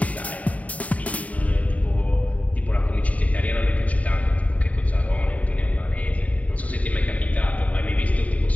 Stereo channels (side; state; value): right; late; 0.069 ms